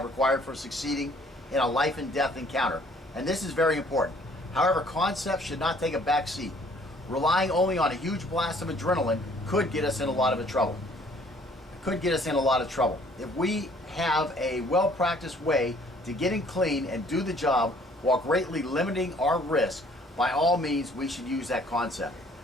required for succeeding in a life and death encounter, and this is very important. However, concepts should not take a back seat. Relying only on a huge blast of adrenaline could get us in a lot of trouble. If we have a well-practiced way to getting clean and do the job while greatly limiting our risk, by all means we should use that concept.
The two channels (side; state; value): both; normal; correlation 0.58